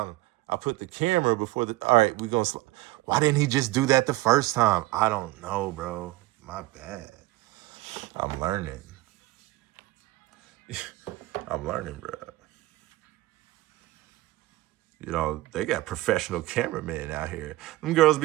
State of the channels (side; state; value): left; quieter; 18.3 dB